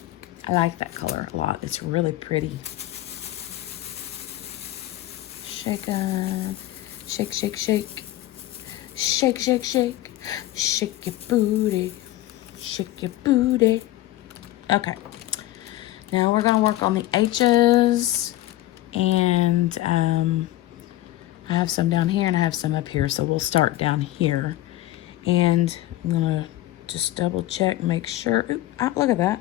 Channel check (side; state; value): right; quieter; 15.4 dB